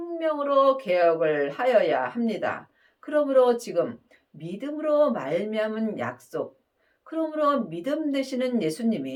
개혁을 하여야 합니다. 그러므로 지금 믿음으로 말미암은 약속, 그러므로 믿음 되시는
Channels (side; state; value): both; identical; correlation 1.00